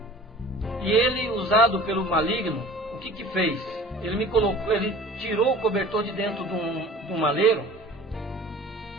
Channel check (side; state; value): both; normal; correlation 0.43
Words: e ele, usado pelo maligno, o que fez? Ele tirou o cobertor de dentro de um maleiro